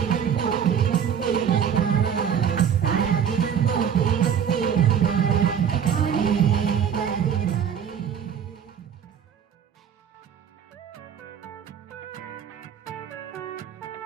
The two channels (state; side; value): quieter; left; 8.2 dB